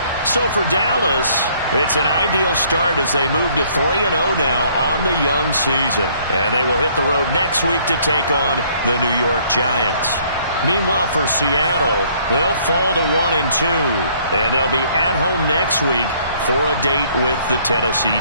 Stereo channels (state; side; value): inverted; both; correlation -0.62